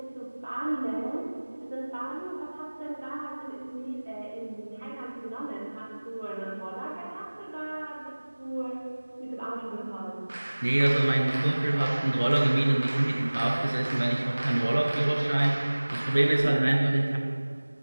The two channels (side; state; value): both; inverted; correlation -1.00